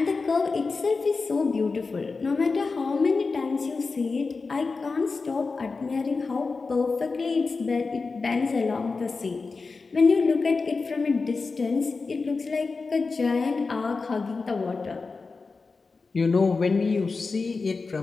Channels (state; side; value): quieter; right; 4.2 dB